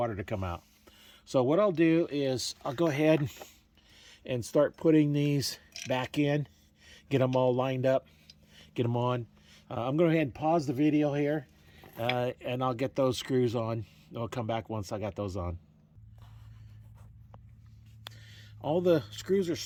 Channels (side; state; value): both; identical; correlation 1.00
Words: to come out. So what I'll do is I'll go ahead and start putting these back in, get them all lined up, get them on. I'm going to go ahead and pause the video here, and I'll get those screws on. I'll come back once I got those on. All the screws are